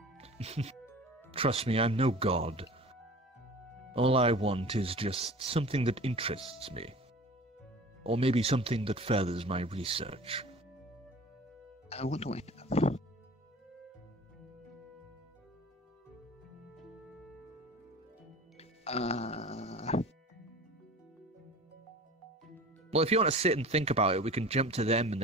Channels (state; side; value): normal; both; correlation 0.41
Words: Trust me, I'm no god. All I want is just something that interests me. Or maybe something that furthers my research. What do I have? Well, if you want to sit and think about it, we can jump to them and